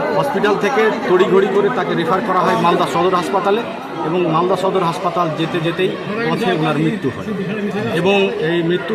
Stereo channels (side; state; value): both; identical; correlation 1.00